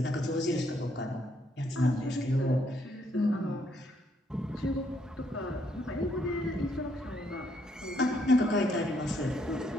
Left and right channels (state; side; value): normal; both; correlation 0.72